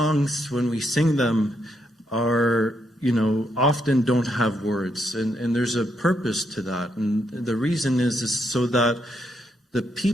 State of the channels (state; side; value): normal; both; correlation 0.78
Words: when we sing them, are often don't have words, and there's a purpose to that. And the reason is so that the